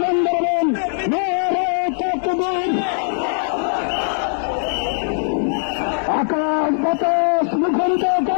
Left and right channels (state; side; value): silent; right; digital silence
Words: দেবেন, নারায়ে তাকবীর। আকাশ বাতাস মুখরিত